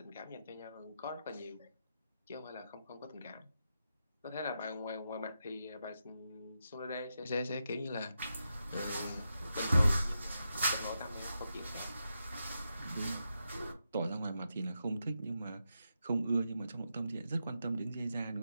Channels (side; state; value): both; inverted; correlation -0.86